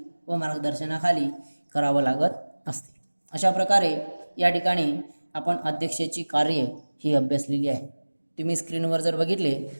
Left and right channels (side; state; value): both; inverted; correlation -1.00